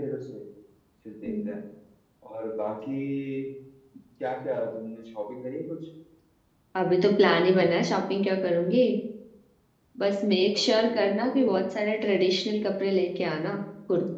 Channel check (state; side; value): identical; both; correlation 1.00